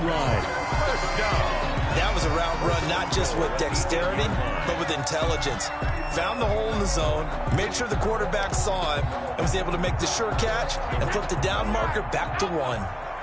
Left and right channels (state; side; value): identical; both; correlation 1.00